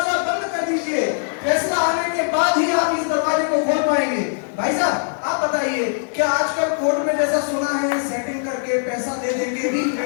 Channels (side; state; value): right; silent; 61 dB below the other